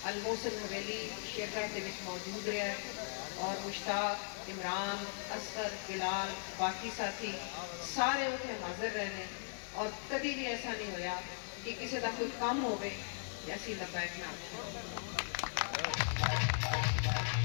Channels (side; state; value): right; silent; 52 dB below the other